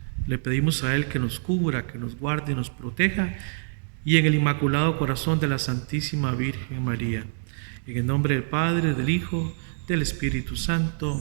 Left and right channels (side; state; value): left; silent; digital silence